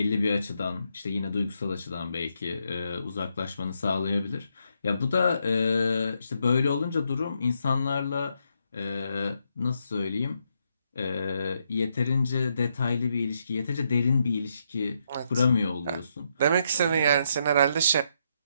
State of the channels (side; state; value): both; inverted; correlation -0.78